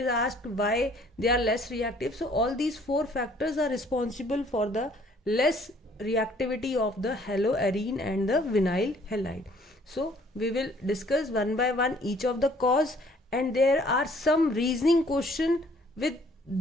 asked why they are less reactive, so all these four factors are responsible for the less reactivity of the haloarene and the vinyl halide. So we will discuss one by one each of the cause, and there are some reasoning question with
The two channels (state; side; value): normal; both; correlation 0.59